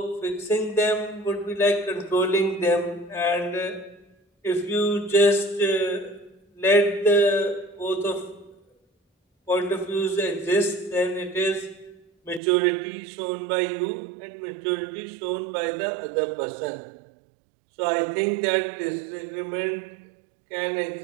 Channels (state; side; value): drops out; left; at 12.4 s